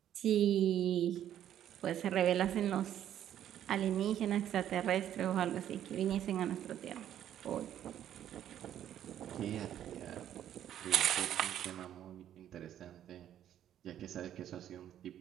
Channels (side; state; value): left; quieter; 10.9 dB